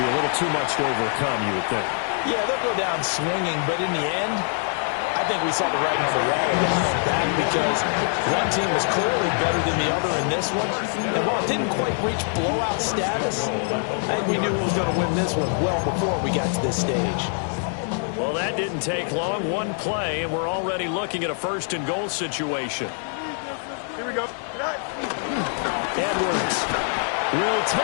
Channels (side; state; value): right; silent; 57 dB below the other